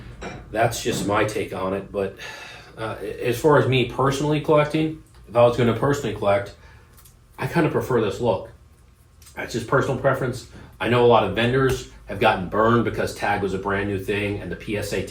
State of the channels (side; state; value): both; identical; correlation 1.00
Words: that's just my take on it. But as far as me personally collecting, if I was going to personally collect, I kind of prefer this look. That's just personal preference. I know a lot of vendors have gotten burned because Tag was a brand new thing and the PSA